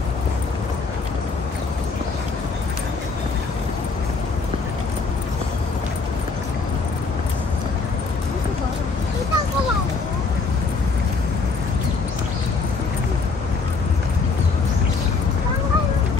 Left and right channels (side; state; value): right; quieter; 4.4 dB